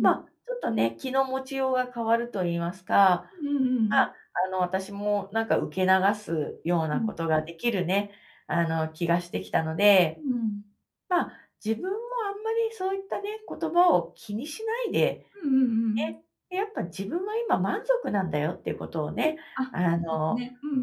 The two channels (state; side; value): identical; both; correlation 1.00